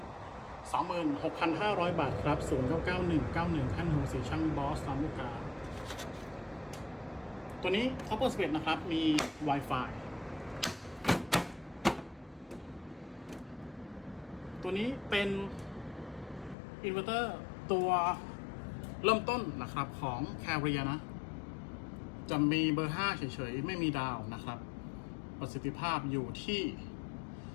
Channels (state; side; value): drops out; right; at 16.6 s